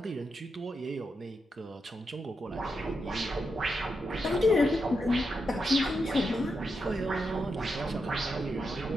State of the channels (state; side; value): normal; both; correlation 0.85